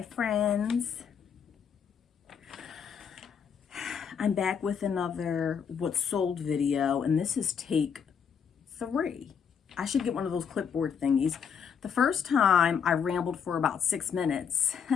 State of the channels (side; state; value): right; quieter; 7.1 dB